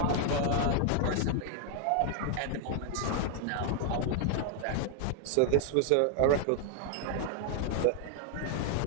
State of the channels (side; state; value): both; different; correlation 0.00